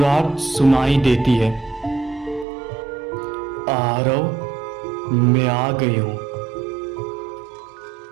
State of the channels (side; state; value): left; drops out; at 2.5 s